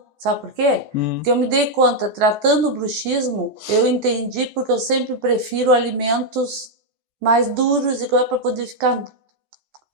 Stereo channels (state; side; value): late; left; 14 ms